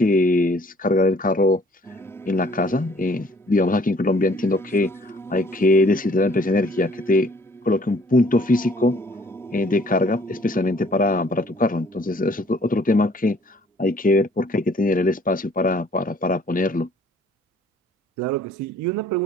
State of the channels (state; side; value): normal; both; correlation 0.58